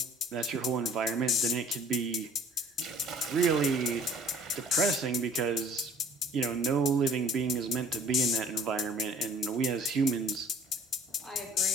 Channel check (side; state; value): both; normal; correlation 0.51